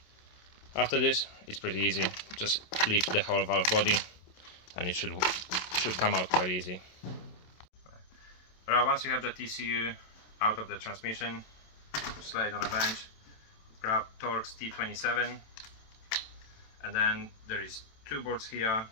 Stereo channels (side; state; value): right; late; 27 ms